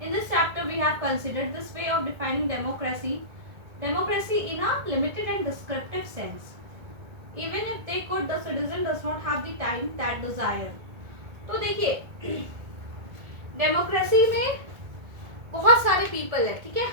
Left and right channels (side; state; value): left; late; 1.8 ms